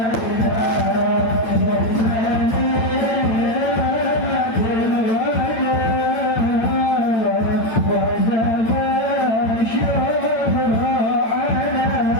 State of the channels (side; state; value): right; late; 8.9 ms